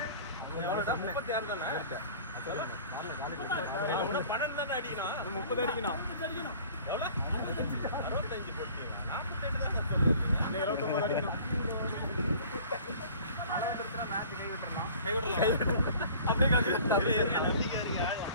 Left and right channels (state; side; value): inverted; both; correlation -0.48